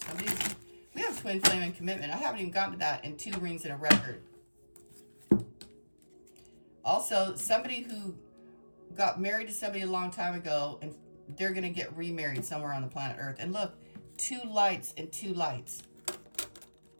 We have twin flame and commitment. I haven't even gotten to that, and 2 rings and a record. Also, somebody who got married to somebody a long time ago, and they're going to get remarried somewhere on the planet Earth. And look, 2 lights and 2 lights.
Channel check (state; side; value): inverted; both; correlation -1.00